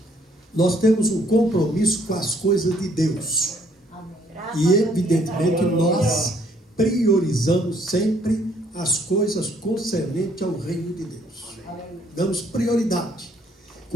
Nós temos um compromisso com as coisas de Deus. E, evidentemente, nós priorizamos sempre as coisas concernentes ao reino de Deus. Damos prioridade.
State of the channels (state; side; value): normal; both; correlation 0.65